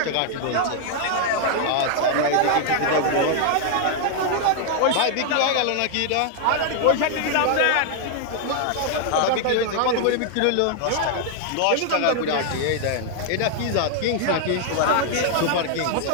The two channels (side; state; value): both; different; correlation 0.00